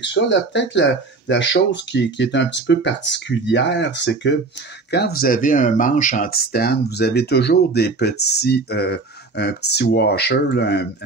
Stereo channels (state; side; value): quieter; left; 3.8 dB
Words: ça. Là, peut-être la chose qui est un petit peu particulière, c'est que quand vous avez un manche en titane, vous avez toujours un petit washer, là,